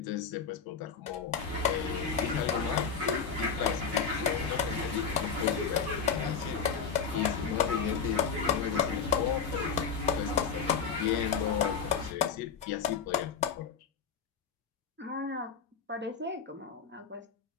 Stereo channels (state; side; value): quieter; right; 6.3 dB